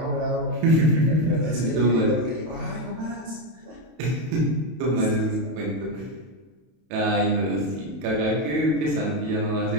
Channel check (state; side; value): late; left; 32 ms